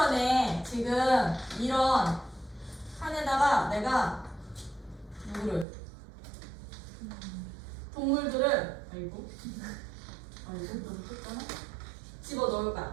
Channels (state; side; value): drops out; left; at 5.7 s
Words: 지금 이런 칸에다가 내가 동물들을 너무 컸잖아? 집어 넣을